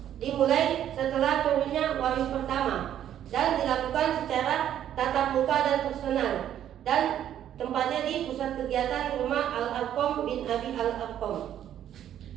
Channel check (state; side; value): quieter; left; 10.7 dB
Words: Dimulai setelah turunnya wahyu pertama dan dilakukan secara tatap muka dan personal, dan tempatnya di pusat kegiatan rumah Al-Arqam bin Abi Al-Arqam.